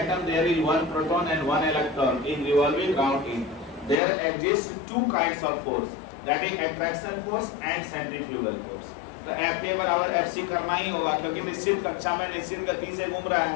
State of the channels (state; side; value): drops out; right; at 4.0 s